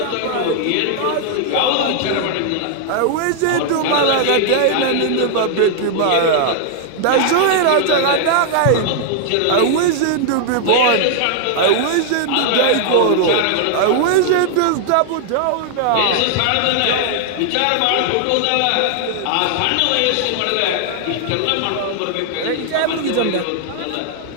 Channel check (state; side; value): different; both; correlation -0.01